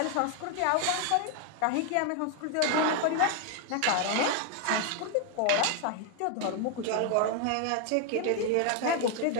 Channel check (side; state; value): both; different; correlation 0.01